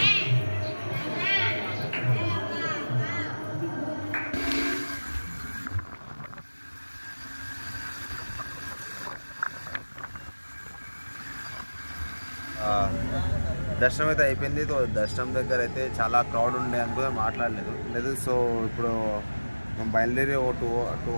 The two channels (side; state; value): both; inverted; correlation -1.00